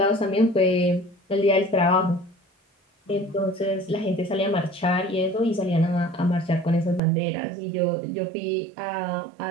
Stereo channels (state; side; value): drops out; left; at 7.0 s